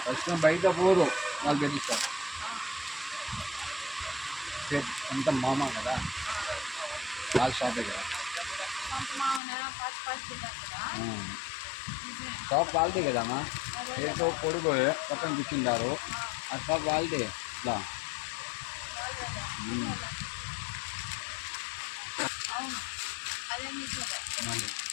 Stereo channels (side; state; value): right; drops out; at 9.4 s